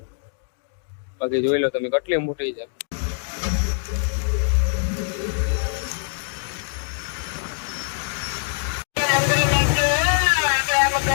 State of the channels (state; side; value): silent; right; digital silence